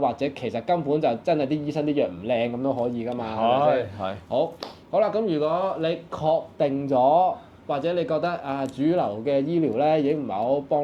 者其實根本就真係啲醫生啲藥唔靚咁都可以噶嘛，係咪先？係。好啦，咁如果你確定咗，或者你覺得主流嘅醫療咧已經唔係好幫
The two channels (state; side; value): identical; both; correlation 1.00